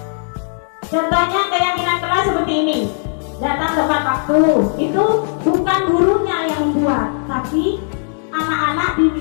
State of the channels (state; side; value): silent; right; digital silence